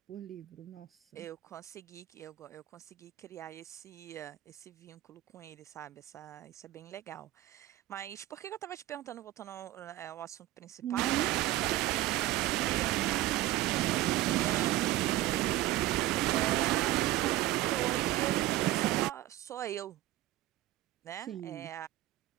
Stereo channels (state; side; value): quieter; left; 15.7 dB